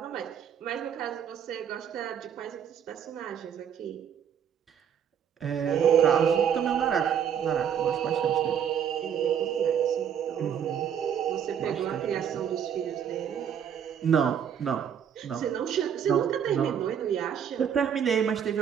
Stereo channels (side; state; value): left; quieter; 8.5 dB